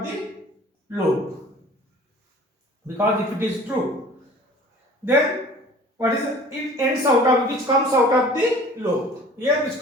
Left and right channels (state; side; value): normal; both; correlation 0.46